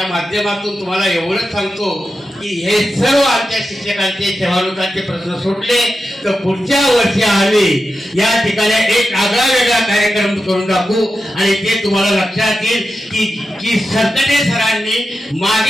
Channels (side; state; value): both; normal; correlation 0.90